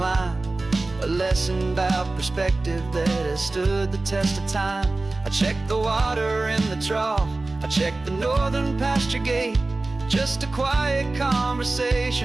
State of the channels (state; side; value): quieter; left; 3.1 dB